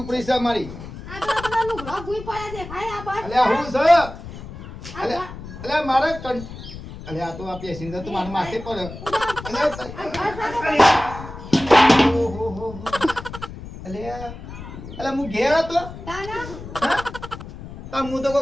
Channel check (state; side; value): noise; left; rumble, 12 dB below the sound